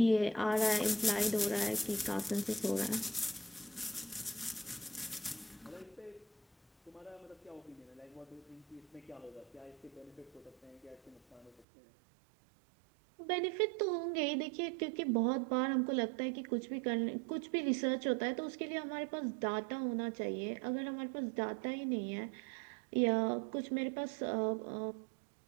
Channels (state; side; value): drops out; left; at 11.7 s